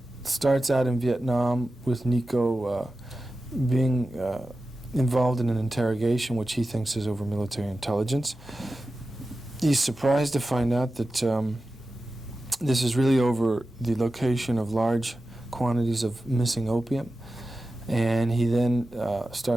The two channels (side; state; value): both; normal; correlation 0.94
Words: Starts out in Vietnam with Nico being involved in an interrogation which he thinks is over military intelligence. He's surprised to find out that this is really over the location of large quantities of missing opium. And he then